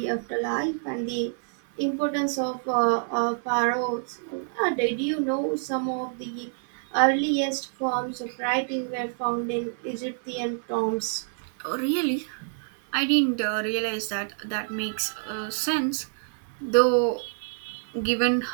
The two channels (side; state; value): left; silent; digital silence